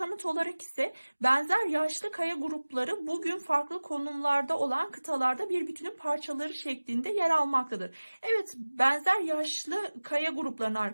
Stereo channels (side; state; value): both; inverted; correlation -1.00